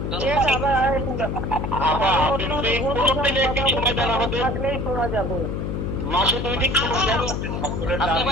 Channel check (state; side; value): noise; left; hum, 2 dB below the sound